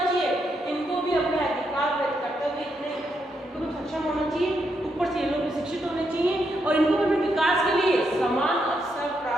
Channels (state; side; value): normal; both; correlation 0.80